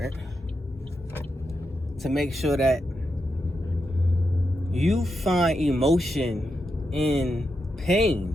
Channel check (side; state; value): both; normal; correlation 0.85